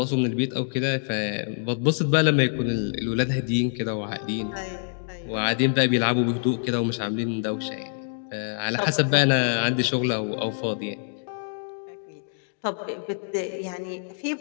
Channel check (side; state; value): right; silent; digital silence